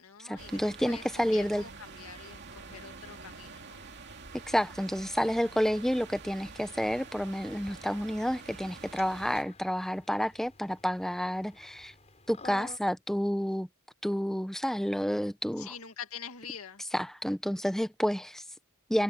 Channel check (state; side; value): normal; both; correlation 0.97